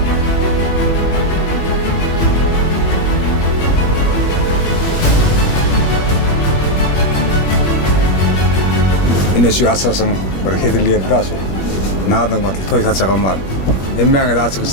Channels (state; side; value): late; right; 21 ms